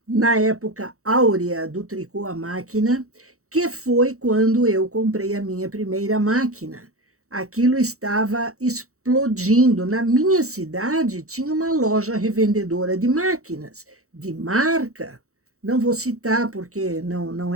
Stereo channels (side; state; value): left; late; 0.64 ms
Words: na época áurea do tricô à máquina, que foi quando eu comprei a minha primeira máquina? Aquilo estava explodindo. Na minha cidade tinha uma loja revendedora de máquinas, de marca. Não vou citar porque não